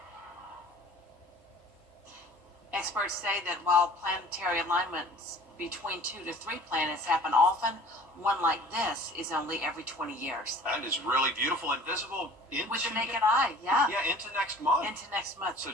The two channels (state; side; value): normal; both; correlation 0.48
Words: Experts say that while planetary alignments between 2 to 3 planets happen often, one like this is only every 20 years. That is really beautiful and visible into With the naked eye, yeah. Yeah, into next month. Into next month. So